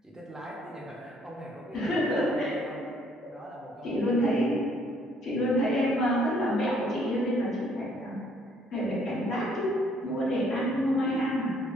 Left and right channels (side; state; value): both; normal; correlation 0.64